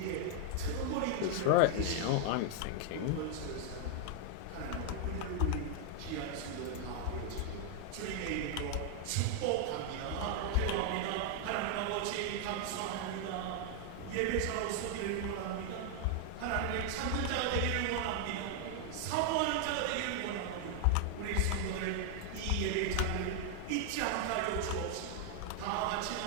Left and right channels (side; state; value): both; different; correlation 0.00